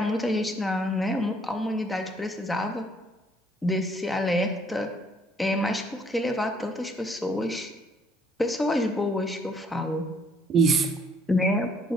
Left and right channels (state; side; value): normal; both; correlation 0.64